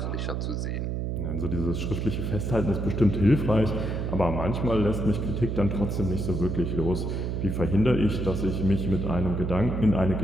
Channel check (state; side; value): noise; right; hum, 2 dB below the sound